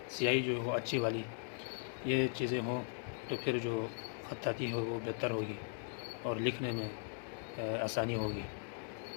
سیاہی جو ہو اچھی والی، یہ چیزیں ہوں تو پھر جو خطاطی ہو وہ بہتر ہوگی اور لکھنے میں آسانی ہوگی۔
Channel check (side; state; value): right; silent; 52 dB below the other